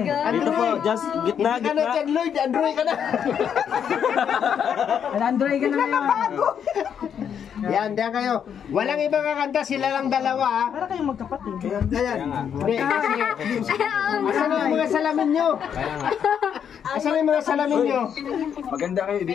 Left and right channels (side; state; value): right; quieter; 8.1 dB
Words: Dito po, just gitna, Hindi ka na gitna. John Lloyd, Andrew ka na. Android ka na ngayon. Yan, diyan kayo. Walang ibang kakanta, sila lang dalawa ha. Para kayong magkapatid. Ayan. Hindi, kasi, asan na yung mga salamin nyo? Asan na yung mga salamin nyo? Maganda kayo,